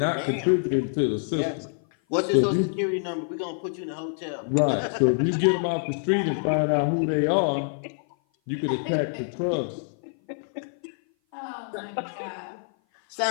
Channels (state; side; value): silent; right; 56 dB below the other